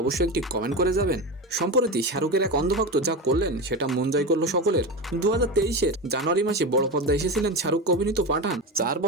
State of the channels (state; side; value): normal; both; correlation 0.21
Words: অবশ্যই একটি কমেন্ট করে যাবেন। সম্প্রতি শাহরুখের এক অন্ধভক্ত যা করলেন সেটা মন জয় করলো সকলের। 2023-এর জানুয়ারি মাসে বড় পর্দায় এসেছিলেন শাহরুখ অভিনীত পাঠান। 4